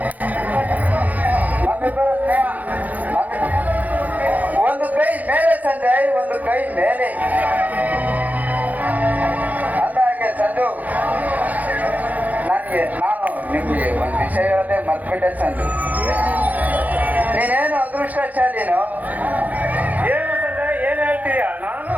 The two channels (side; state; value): left; late; 0.077 ms